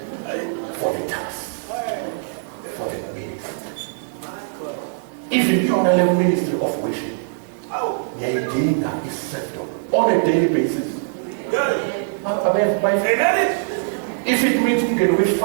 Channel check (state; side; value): silent; left; digital silence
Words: for the task. For the ministry. Even if you're on a level ministry of worship, the idea is served on a daily basis. If it means we can wish